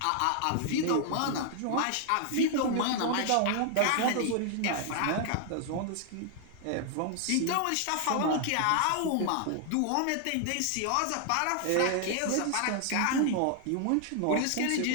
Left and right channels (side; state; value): both; different; correlation 0.00